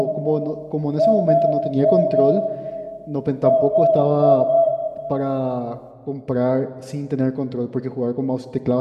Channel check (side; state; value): both; identical; correlation 1.00